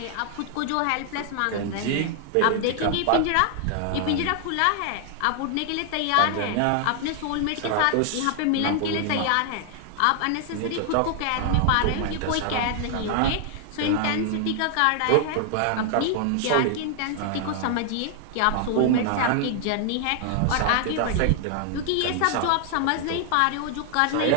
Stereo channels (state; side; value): different; both; correlation 0.00